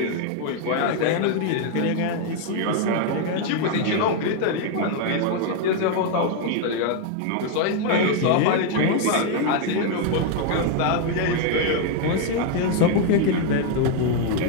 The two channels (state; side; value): different; both; correlation 0.00